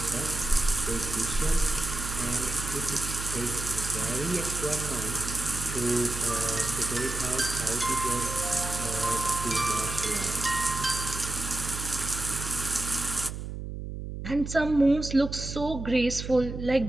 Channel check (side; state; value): right; noise; hum, 7 dB below the sound